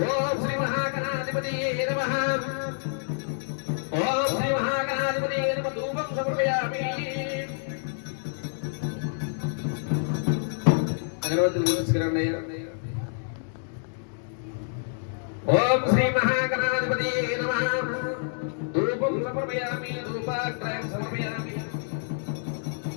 ఓం శ్రీ మహాగణాధిపతియే నమః ఓం శ్రీ మహాగణాధిపతియే నమః ధూపం సమర్పయామి అగరవత్తులు పూజించుకురండి ఓం శ్రీ మహాగణాధిపతియే నమః ధూపం సమర్పయామి ధూపాగ్రయం సమర్పయామి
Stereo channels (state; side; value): silent; right; digital silence